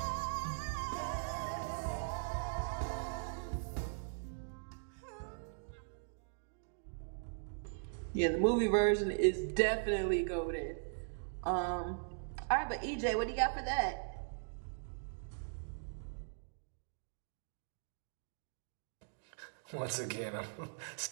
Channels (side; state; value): left; silent; digital silence